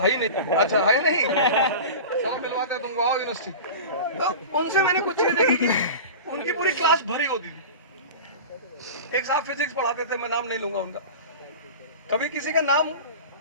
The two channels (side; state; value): both; inverted; correlation -0.32